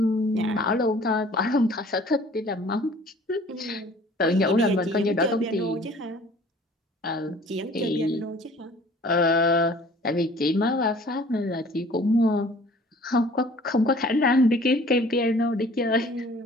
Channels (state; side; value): normal; both; correlation 0.51